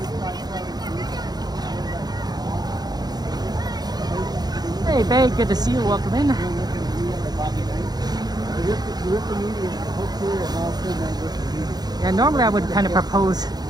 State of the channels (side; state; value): left; late; 0.19 ms